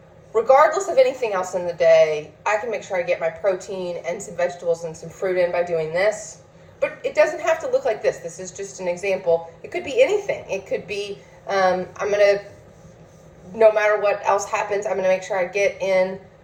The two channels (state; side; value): identical; both; correlation 1.00